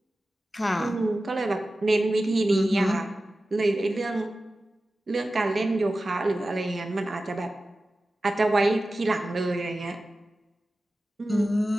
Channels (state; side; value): normal; both; correlation 0.95